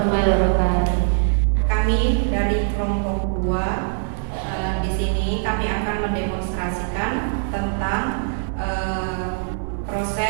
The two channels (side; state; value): left; silent; digital silence